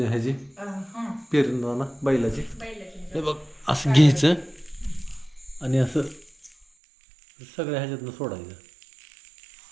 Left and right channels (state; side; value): drops out; left; at 6.7 s